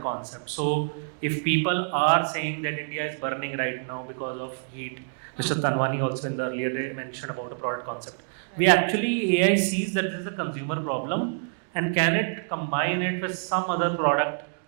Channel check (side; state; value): left; silent; digital silence